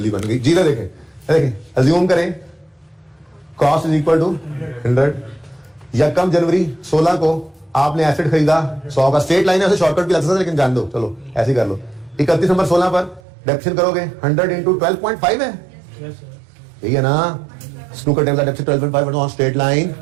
बन गई। जी देखें देखें अज्यूम करें कॉस्ट इज इक्वल टू 100। यकम जनवरी 16 को आपने एसेट खरीदा 100 का, स्ट्रेट लाइन है, ऐसे शॉर्टकट भी लग सकता है लेकिन जान दो, चलो ऐसे ही कर लो। 31 दिसंबर 16 पर डेप्शन करोगे 100 इंटू 12.5 है, Yes, sir. यही है ना। स्नूकर टेबल का depreciation 12.5 on straight line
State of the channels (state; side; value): drops out; left; at 13.2 s